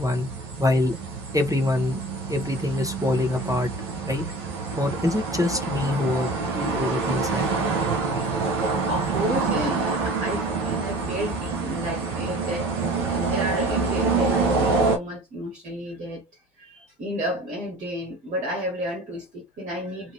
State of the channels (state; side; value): normal; both; correlation 0.43